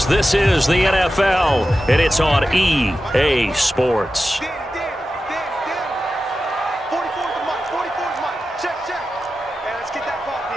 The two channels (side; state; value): both; normal; correlation 0.92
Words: This is the NFL, and it's on EA Sports. 44's mine. 44's mine. Check. Hey, let's get that ball,